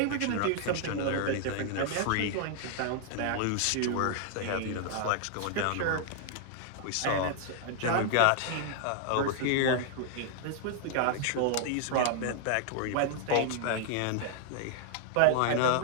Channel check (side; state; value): both; different; correlation 0.00